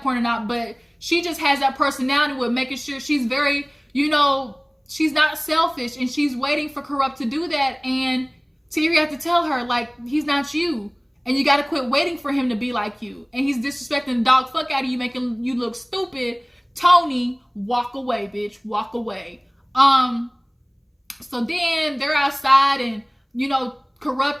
or not, but she just has that personality with making sure she's very, she's not selfish, and she's waiting for Kurupt to do that. And Tahiry had to tell her, like, he's not you. And you got to quit waiting for him to be like you. And he's disrespecting the dog fuck out of you, making you look stupid. Toni, walk away, bitch. Walk away. So then they're outside, and,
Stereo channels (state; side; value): identical; both; correlation 1.00